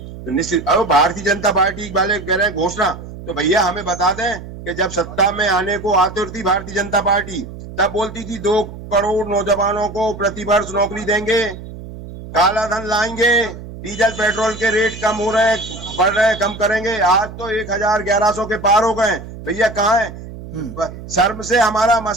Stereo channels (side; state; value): right; noise; hum, 13 dB below the sound